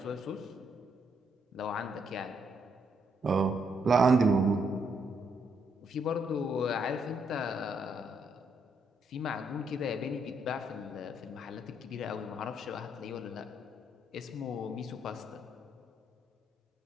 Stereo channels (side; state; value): both; normal; correlation 0.75